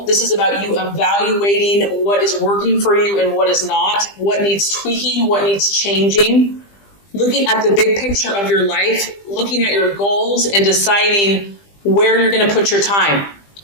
This is about you evaluating what is working for you and what is not, what needs tweaking, what needs changing, looking at the big picture of your life, looking at your goals and deciding where you're going to put your time.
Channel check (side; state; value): right; late; 20 ms